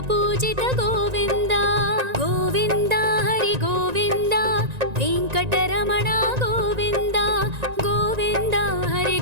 పూజిత గోవింద గోవింద హరి గోవింద వెంకటరమణ గోవింద గోవింద హరి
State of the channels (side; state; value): left; late; 1.9 ms